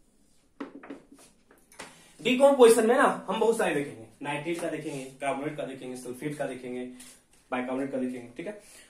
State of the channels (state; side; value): identical; both; correlation 1.00